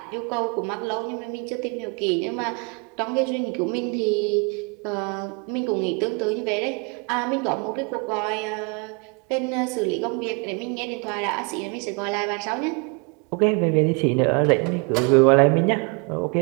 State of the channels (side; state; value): left; quieter; 32.0 dB